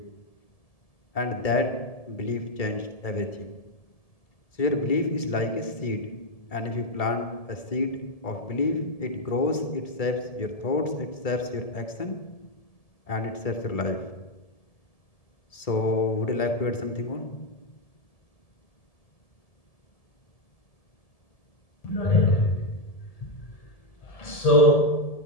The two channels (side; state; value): right; late; 1.7 ms